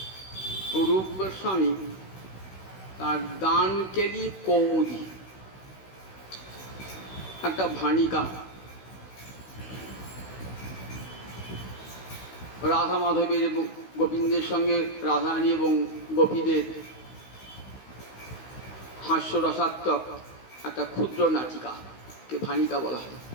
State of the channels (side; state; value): right; late; 16 ms